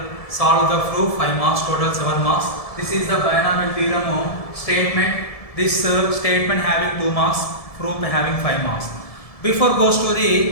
solve the proof 5 marks, total 7 marks. This is the binomial theorem statement. This statement having 2 marks, proof having 5 marks. Before goes to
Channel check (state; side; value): late; right; 1.7 ms